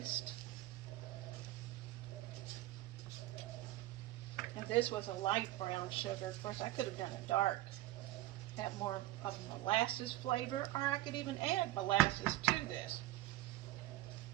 And this was a light brown sugar. Of course, I could have done a dark, have more of a molasses flavor, or I could even add molasses to this.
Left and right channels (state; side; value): quieter; left; 16.3 dB